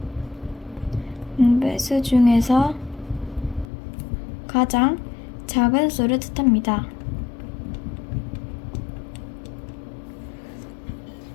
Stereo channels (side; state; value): right; drops out; at 3.7 s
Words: 가장 작은 수를 뜻합니다.